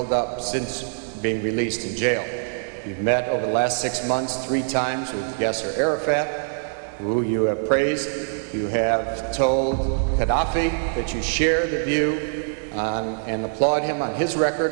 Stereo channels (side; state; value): left; silent; digital silence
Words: up since being released in jail. You've met over the last 6 months 3 times with Yasser Arafat, who you have praised. You have told Gaddafi that you share the view and applaud him on his